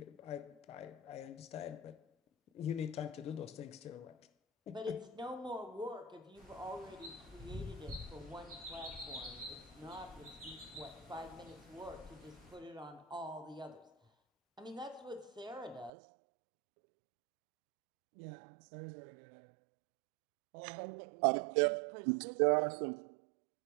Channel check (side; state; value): left; drops out; at 15.9 s